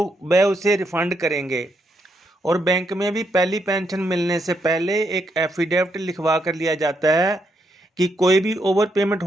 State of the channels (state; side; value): normal; both; correlation 0.78